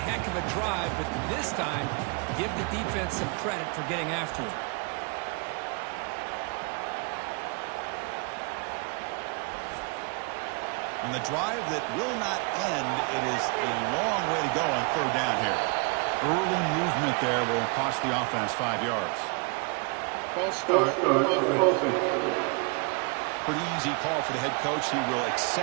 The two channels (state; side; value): quieter; left; 33.0 dB